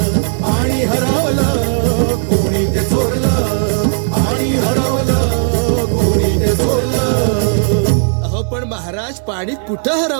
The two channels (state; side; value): silent; left; digital silence